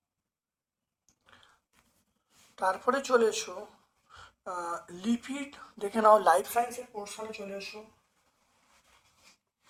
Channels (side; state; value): both; identical; correlation 1.00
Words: তারপরে চলে এসো লিপিড দেখে নাও, লাইফ সায়েন্সের পোর্শনে চলে এসো।